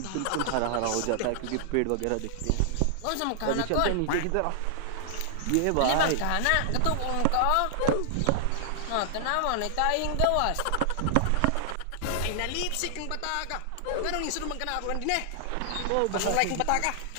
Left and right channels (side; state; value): both; different; correlation -0.01